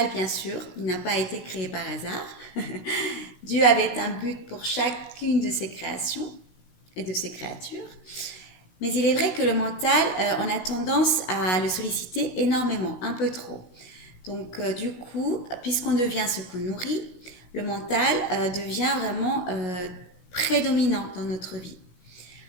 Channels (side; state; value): right; late; 16 ms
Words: bien sûr, il n'a pas été créé par hasard. Dieu avait un but pour chacune de ses créations et de ses créatures. Mais il est vrai que le mental, on a tendance à le solliciter énormément, un peu trop. Donc du coup, puisqu'on devient ce qu'on nourrit, le mental devient vraiment prédominant dans notre vie.